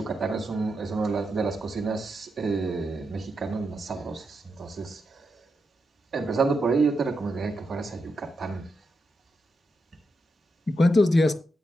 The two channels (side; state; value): both; normal; correlation 0.85